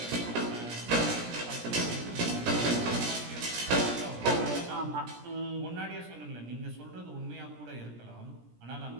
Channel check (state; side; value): late; left; 17 ms